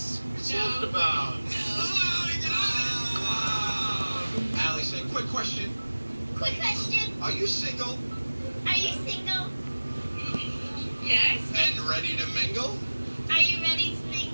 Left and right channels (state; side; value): inverted; both; correlation -1.00